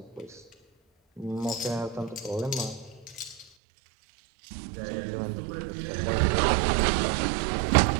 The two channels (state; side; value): drops out; left; at 3.5 s